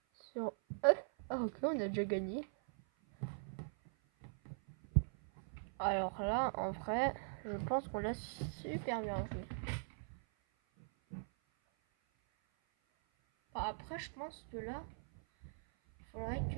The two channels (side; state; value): left; silent; 50 dB below the other